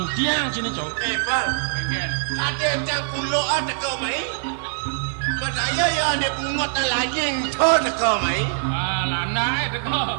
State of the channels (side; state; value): left; silent; digital silence